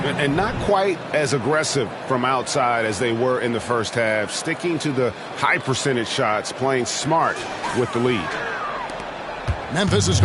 And not quite as aggressive from outside as they were in the first half. Sticking to the high percentage shots, playing smart with the lead. Memphis has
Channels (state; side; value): identical; both; correlation 1.00